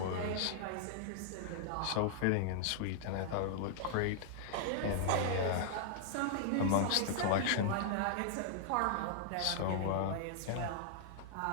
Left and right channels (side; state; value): both; different; correlation -0.01